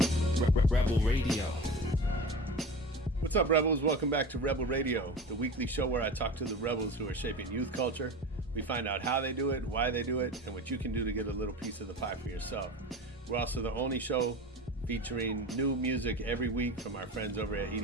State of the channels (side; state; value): both; normal; correlation 0.32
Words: Rebel Radio. What's up, Rebels? Welcome back to Rebel Radio, the weekly show where I talk to the rebels who are shaping youth culture. We find out how they do it, why they do it, and what you can do to get a little piece of the pie for yourself. We're also the only show featuring new music every week from our friends over at